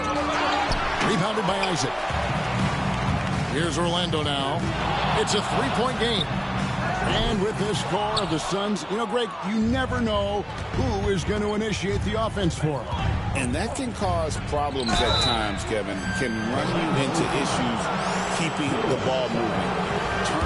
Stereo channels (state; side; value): identical; both; correlation 1.00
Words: Rebounded by Isaac. Here's Orlando now. It's a three-point game. And with this score of the Suns, you know, Greg, you never know who is going to initiate the offense for them. And that can cause problems at times, Kevin. Can run you into issues keeping the ball moving.